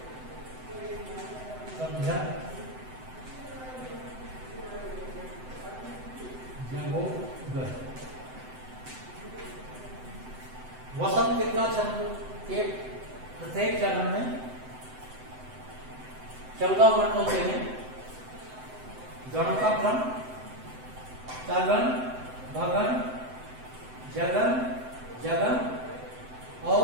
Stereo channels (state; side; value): late; left; 7.8 ms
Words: वसंत का छंद के प्रत्येक चरण में 14 वर्ण होते हैं। गणों का क्रम तगन, भगन, जगन, जगन